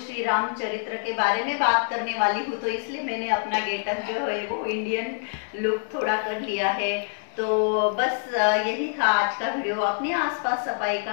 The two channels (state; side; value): silent; right; digital silence